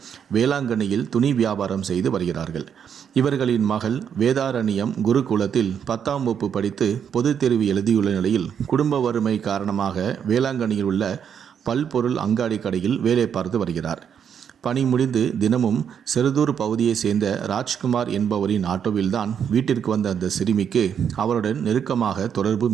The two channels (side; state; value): left; quieter; 8.0 dB